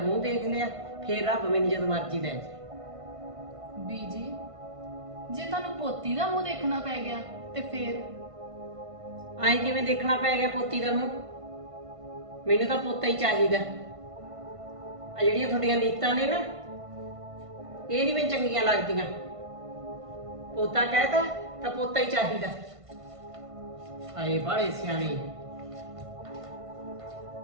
ਦੇਖ ਲਿਆ ਫੇਰ ਰੱਬ ਮੈਨੂੰ ਜਦ ਮਰਜ਼ੀ ਲੈ ਜਾਏ। बीजी जे ਤੁਹਾਨੂੰ ਪੋਤੀ ਦਾ ਮੂੰਹ ਦੇਖਣਾ ਪੈ ਗਿਆ ਤੇ ਫੇਰ ਆਏ ਕਿਵੇਂ ਦੇਖਣਾ ਪੈ ਗਿਆ ਪੋਤੀ ਦਾ ਮੂੰਹ? ਮੈਨੂੰ ਤਾਂ ਪੋਤਾ ਹੀ ਚਾਹੀਦਾ। ਆ ਜਿਹੜੀਆਂ ਤੁਹਾਡੀਆਂ ਨੀਤਾਂ ਨੇ ਨਾ ਇਹ ਨਹੀਂ ਮੈਨੂੰ ਚੰਗੀਆਂ ਲੱਗਦੀਆਂ। ਪੋਤਾ ਕਹਿਤਾ ਤਾਂ ਪੋਤਾ ਹੀ ਚਾਹੀਦਾ। ਆਏ ਬਾਲੇ ਸਿਆਣੇ।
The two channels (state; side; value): late; left; 1.5 ms